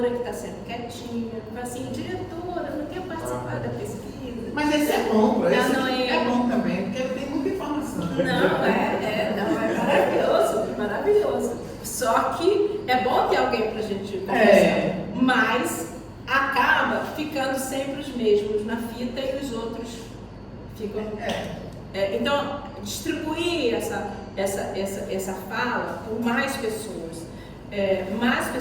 que está sendo quietinha, fala assim, diretora, não quer participar da pesquisa. Mas esse é bom, esse não, é bom também, porque ele tem muita informação. Não, é maravilhoso. Só que é bom ter alguém pra gente conversar. Mas acaba ficando sempre os mesmos na fita e os outros ficam. Então, distribuir essa fala por mais pessoas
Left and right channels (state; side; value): identical; both; correlation 1.00